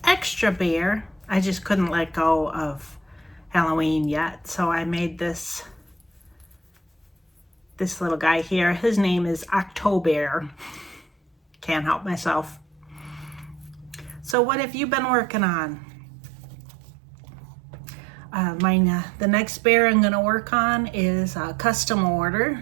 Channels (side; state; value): left; drops out; at 14.4 s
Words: extra bear. I just couldn't let go of Halloween yet, so I made this little guy here. His name is October. Can't help myself. So what have you been working on? The next bear I'm going to work on is a custom